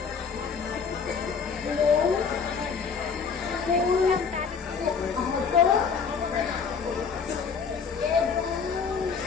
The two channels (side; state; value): right; quieter; 5.9 dB